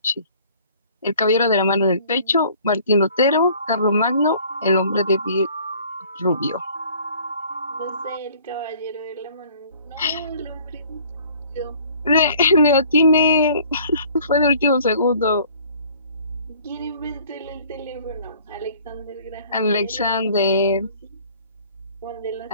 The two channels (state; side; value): inverted; both; correlation -0.54